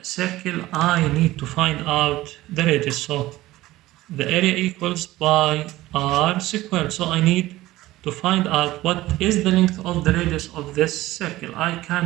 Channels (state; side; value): quieter; left; 17.0 dB